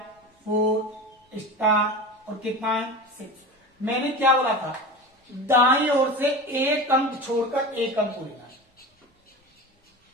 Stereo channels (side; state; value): both; normal; correlation 0.29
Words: 4 स्टार और कितना है 6। मैंने क्या बोला था, दाईं ओर से एक अंक छोड़कर एक अंक लेना है।